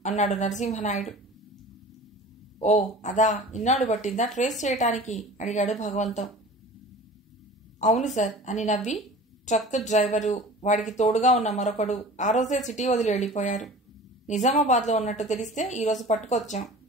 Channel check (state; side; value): normal; both; correlation 0.41